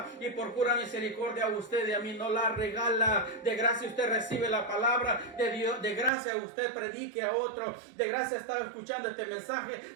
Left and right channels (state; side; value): drops out; left; at 6.1 s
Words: Y por pura misericordia a usted y a mí no la regala. De gracia usted recibe la palabra de Dios. De gracia usted predique a otro. De gracia está escuchando este mensaje.